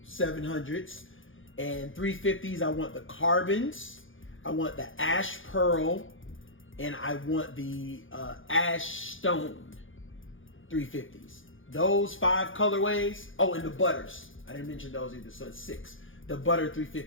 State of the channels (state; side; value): late; right; 0.58 ms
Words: 700s, and 350s. I want the carbons, I want the ash pearl, and I want the ash stone 350s. Those 5 colorways. Oh, and the butters. I didn't mention those either, so it's 6. The butter